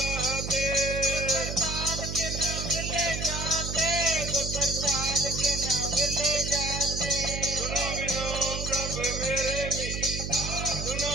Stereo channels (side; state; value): right; noise; hum, 4 dB below the sound